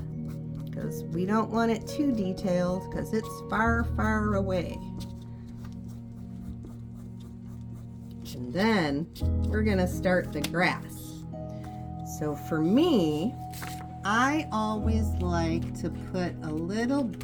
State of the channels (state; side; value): identical; both; correlation 1.00